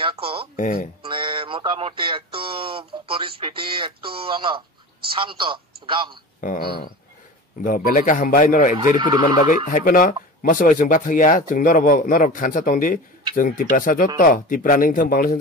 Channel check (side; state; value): both; normal; correlation 0.33